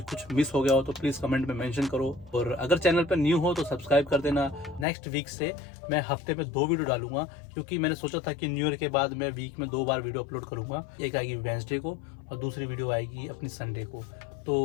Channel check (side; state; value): right; drops out; at 4.9 s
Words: कुछ मिस हो गया हो तो प्लीज़ कमेंट में मेंशन करो, और अगर चैनल पर न्यू हो तो सब्सक्राइब कर देना। नेक्स्ट वीक से मैं हफ्ते में 2 वीडियो डालूंगा, क्योंकि मैंने सोचा था कि न्यू ईयर के बाद मैं वीक में 2 बार वीडियो अपलोड करूँगा। एक आएगी वेडनेसडे को और दूसरी वीडियो आएगी अपनी संडे को। तो